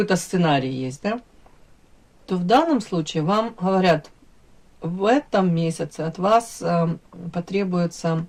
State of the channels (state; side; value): identical; both; correlation 1.00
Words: сценарий есть, да, то в данном случае вам говорят, в этом месяце от вас потребуется